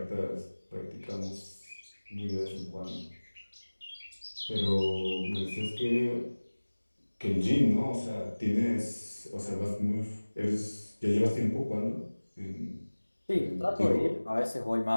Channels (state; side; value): inverted; both; correlation -1.00